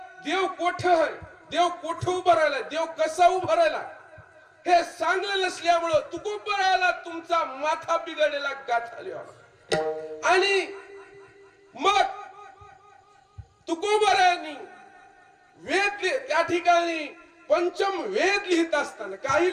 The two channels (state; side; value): identical; both; correlation 1.00